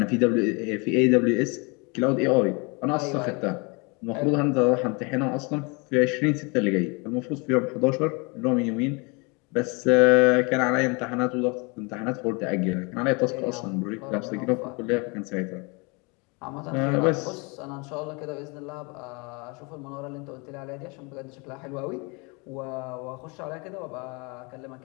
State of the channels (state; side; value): quieter; right; 30.1 dB